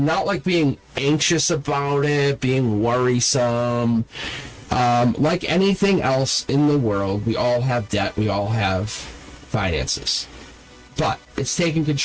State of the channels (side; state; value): both; identical; correlation 1.00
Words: not like being anxious about it, being worrisome. Like anything else in the world, we all have debt, we all have finances. But it's taking